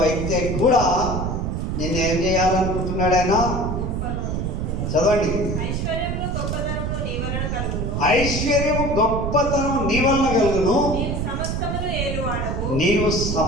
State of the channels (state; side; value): noise; right; rumble, 2 dB below the sound